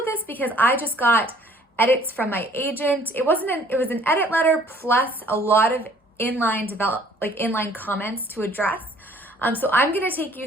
this because I just got edits from my agent. It was an edit letter plus a lot of inline comments to address. So I'm going to take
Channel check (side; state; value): both; normal; correlation 0.57